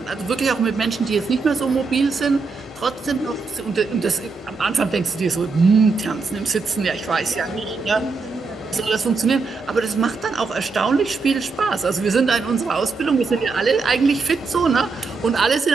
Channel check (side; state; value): left; quieter; 4.4 dB